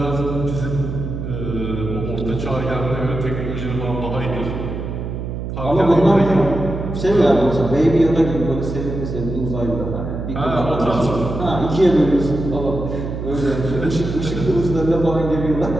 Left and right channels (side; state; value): right; noise; hum, 6 dB below the sound